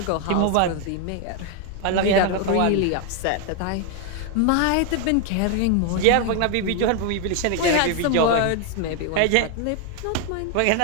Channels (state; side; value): different; both; correlation 0.01